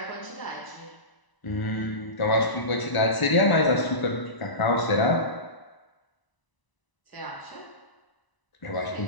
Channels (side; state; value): right; late; 1.0 ms